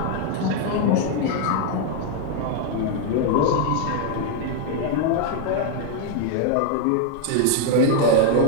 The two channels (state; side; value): different; both; correlation 0.00